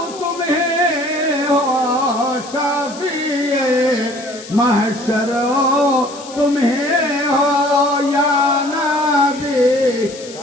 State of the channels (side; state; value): left; noise; hiss, 16 dB below the sound